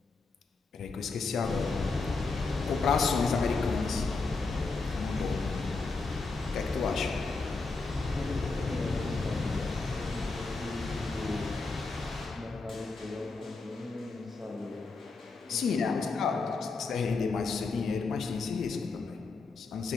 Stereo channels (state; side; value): quieter; right; 3.9 dB